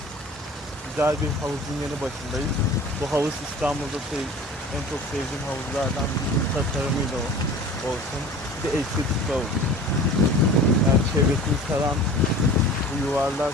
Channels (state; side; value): normal; both; correlation 0.41